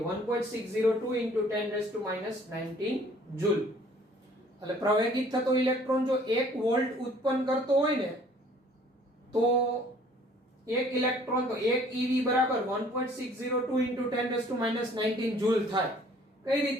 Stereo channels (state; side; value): normal; both; correlation 0.56